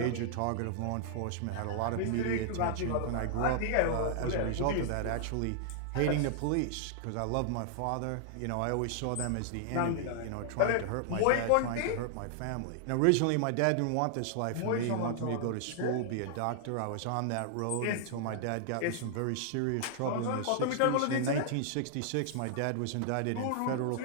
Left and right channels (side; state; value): both; different; correlation -0.01